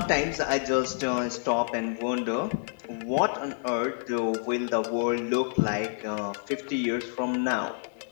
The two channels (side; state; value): right; silent; digital silence